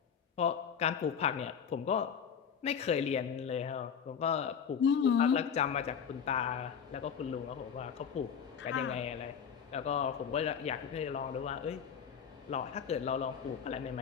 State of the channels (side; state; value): right; quieter; 7.4 dB